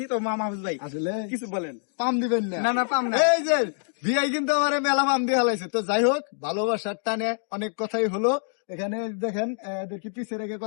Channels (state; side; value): silent; right; digital silence